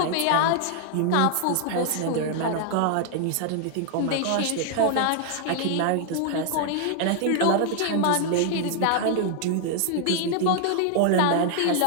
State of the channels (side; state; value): both; different; correlation 0.00